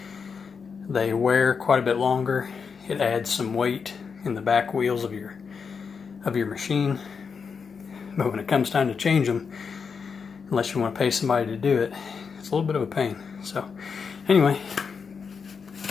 They wear quite a bit longer. It adds some weight in the back wheels of your machine. But when it comes time to change them, unless you want to pay somebody to do it, it's a little bit of a pain. So anyway,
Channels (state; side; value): quieter; right; 5.8 dB